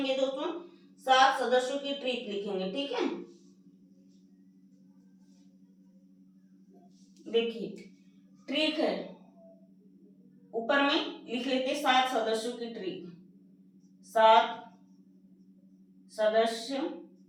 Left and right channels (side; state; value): both; identical; correlation 1.00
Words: दोस्तों, 7 सदस्यों की ट्रिक लिखेंगे, ठीक है। देखिए ट्रिक है, ऊपर में लिख लेते 7 सदस्यों की ट्रिक। 7